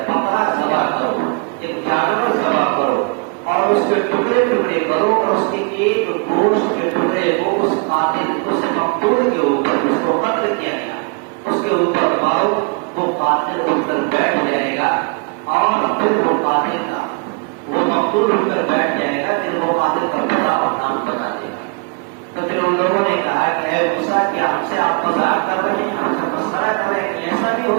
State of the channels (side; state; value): left; quieter; 34.6 dB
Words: بکرا ذبح کرو، ایک جانور ذبح کرو، اور اس کے ٹکڑے ٹکڑے کرو، اور اس کے ایک گوشت کے ٹکڑے کو اس قاتل اس مقتول کے اوپر اس کو قتل کیا گیا اس کے اوپر مارو، وہ قاتل اٹھ کر بیٹھ جائے گا، اور پھر وہ قاتل کا وہ مقتول اٹھ کر بیٹھ جائے گا، پھر وہ قاتل کا بڑا احکام بتا دے گا۔ تو پھر ان لوگوں نے کہا کہ اے موسیٰ کیا ہم سے آپ مذاق کر رہے ہیں، ہم سے مسخرہ کر رہے ہیں کہ ایسا بھی